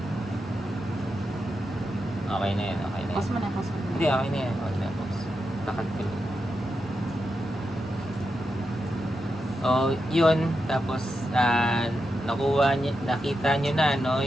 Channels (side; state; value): both; normal; correlation 0.87